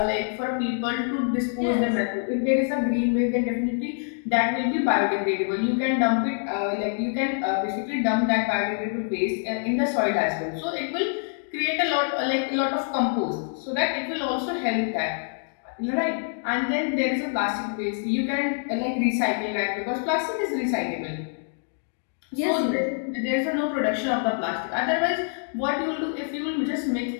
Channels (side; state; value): right; silent; digital silence